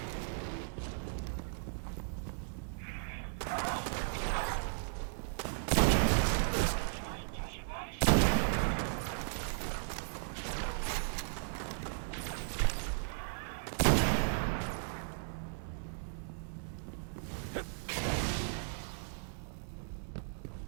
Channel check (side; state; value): left; silent; 54 dB below the other